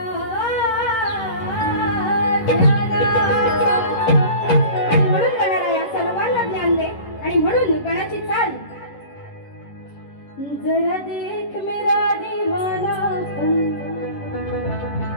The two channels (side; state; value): right; late; 11 ms